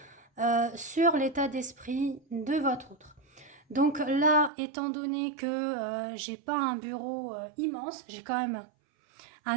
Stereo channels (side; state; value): left; drops out; at 4.5 s